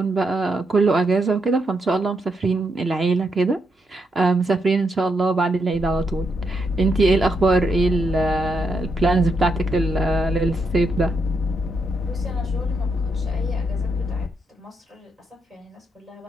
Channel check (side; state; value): both; normal; correlation 0.80